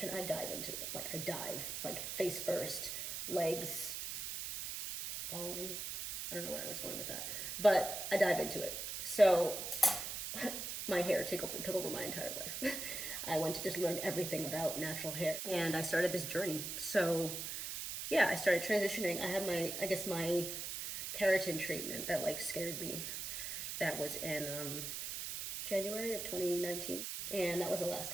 I dive into it. Like I dive, like face first, legs falling. I don't know where I was going with that, but I dive into it. So my hair took over my entire life. I went to just learn everything about natural hair, and I started this journey. So yeah, I started transitioning. I had my keratin treatment that like scared me. That was in January of 2019, and that was the last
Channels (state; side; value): noise; right; hiss, 5 dB below the sound